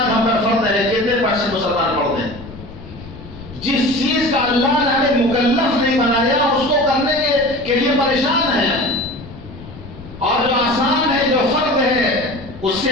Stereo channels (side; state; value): left; noise; rumble, 16 dB below the sound